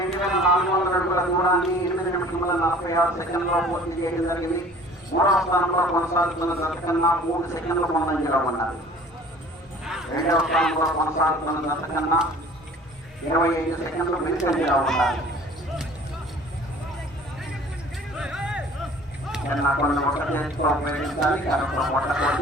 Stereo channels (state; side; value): normal; both; correlation 0.48